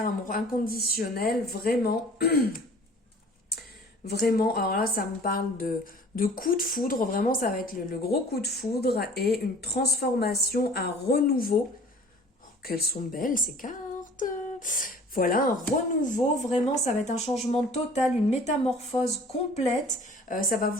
amour inconditionnel, vraiment, vraiment, alors là ça me parle de coup de foudre, vraiment ça va être le gros coup de foudre et une transformation, un renouveau. Oh, qu'elles sont belles ces cartes! Voilà, un renouveau, vraiment, ça va être un changement total, une métamorphose complète. Ça va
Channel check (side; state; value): both; normal; correlation 0.48